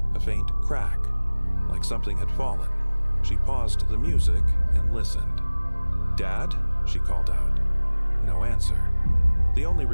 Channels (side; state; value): both; inverted; correlation -1.00